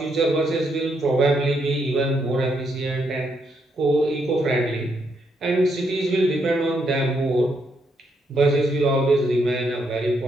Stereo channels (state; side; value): normal; both; correlation 0.77